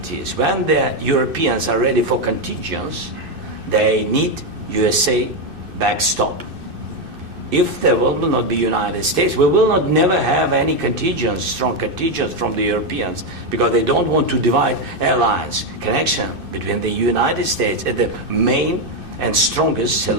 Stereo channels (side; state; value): left; late; 2.6 ms